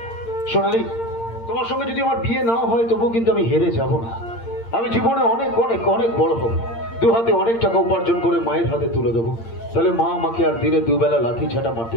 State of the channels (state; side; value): late; right; 8.7 ms